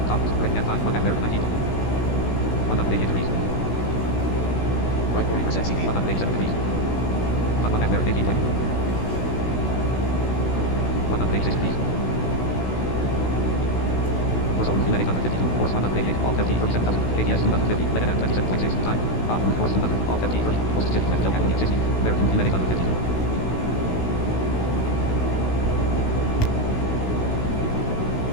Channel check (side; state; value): right; late; 16 ms